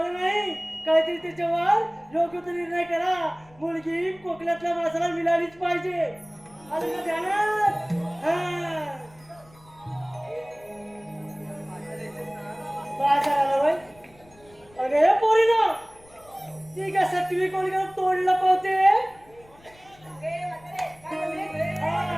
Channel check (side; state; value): left; noise; rumble, 27 dB below the sound